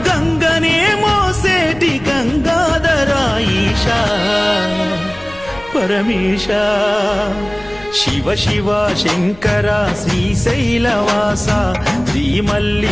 గంగనే మోసేటి గంగాధర ఈశా పరమేశ. శివ శివ శంకర శ్రీశైలవాస, శ్రీ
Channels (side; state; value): left; noise; rumble, 21 dB below the sound